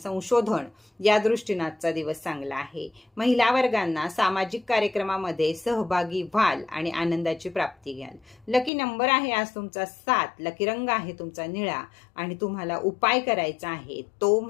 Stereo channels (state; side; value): drops out; right; at 8.7 s